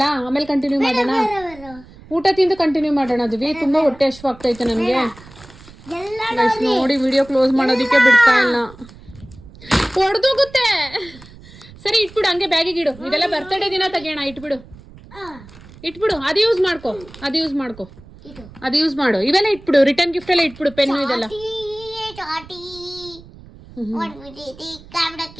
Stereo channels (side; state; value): right; noise; rumble, 20 dB below the sound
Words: ಆಮೇಲೆ ಕಂಟಿನ್ಯೂ ಮಾಡೋಣ. ಊಟ ತಿಂದು ಕಂಟಿನ್ಯೂ ಮಾಡೋಣ. ದುವಿ ತುಂಬ ಹೊಟ್ಟೆ ಹಶ್ವು ಆಗ್ತೈತೆ ನನಗೆ. ನೋಡಿ ವಿಡಿಯೋ ಕ್ಲೋಸ್ ಮಾಡೋದಕ್ಕೆ ಬಿಡ್ತಾ ಇಲ್ಲ, ಹೊಡೆದೋಗುತ್ತೆ. ಸರಿ ಇಟ್ಬಿಡು, ಹಂಗೆ ಬ್ಯಾಗಿಗೆ ಇಡು. ಇದೆಲ್ಲ ಬರ್ತಡೇ ದಿನ ತೆಗಿಯೋಣ. ಇಟ್ಬಿಡು. ಅದು ಯೂಸ್ ಮಾಡು. ಇವೆಲ್ಲ ಇಟ್ಬಿಡು, ರಿಟರ್ನ್ ಗಿಫ್ಟ್ ಎಲ್ಲ ಇಟ್ಬಿಡು. ಪೆನ್ನು ಇದೆಲ್ಲ